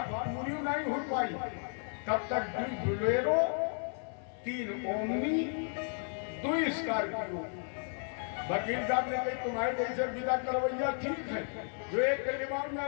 पूरी नहीं हो पाई। तब तक 2 बुलेरो, 3 ओमनी, 2 स्कॉर्पियो। वकील साहब ने कही तुम्हारे जैसे विदा करवैया ठीक है, जो एक के दिमाग में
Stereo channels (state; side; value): silent; right; 55 dB below the other